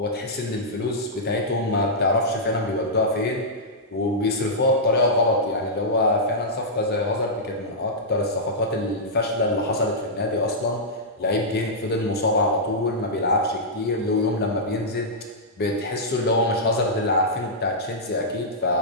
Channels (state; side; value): normal; both; correlation -0.11